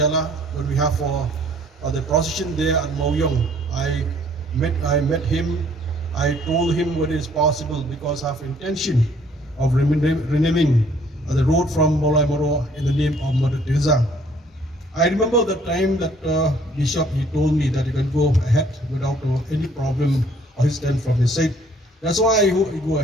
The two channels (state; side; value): normal; both; correlation 0.60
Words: when we have for the procession there at Mauyong. I met him. I told him what is possible because I have intention of renaming the road from Molai Moro in the name of Mother Teresa. I remember the time that Bishop, he told me that he can go ahead without any problem or his stand from his side. That's why I go